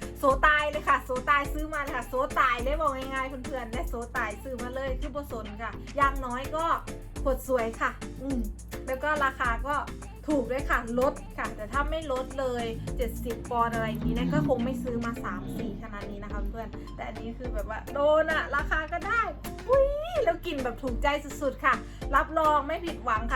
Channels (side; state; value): both; identical; correlation 1.00